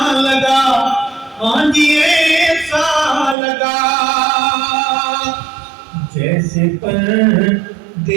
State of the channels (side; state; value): left; drops out; at 3.4 s